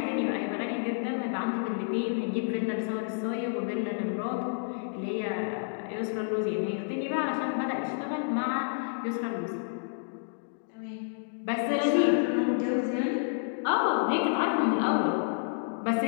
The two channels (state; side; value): silent; right; digital silence